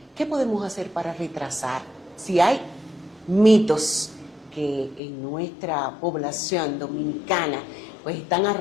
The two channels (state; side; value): drops out; right; at 5.0 s